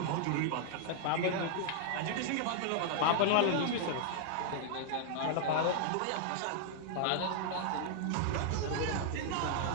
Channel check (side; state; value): both; different; correlation -0.01